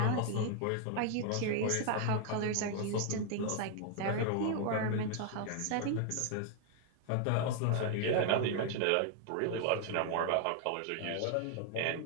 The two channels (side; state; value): both; different; correlation 0.00